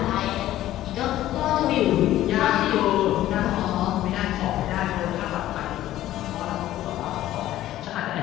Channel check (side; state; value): right; quieter; 13.9 dB